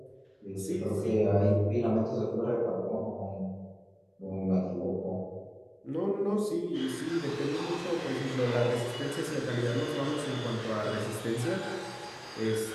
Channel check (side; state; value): both; identical; correlation 1.00